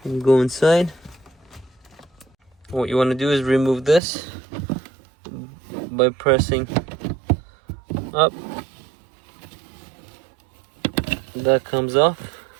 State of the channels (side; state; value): left; drops out; at 4.0 s